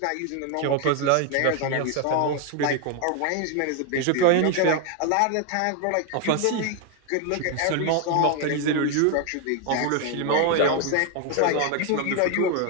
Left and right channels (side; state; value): both; different; correlation 0.01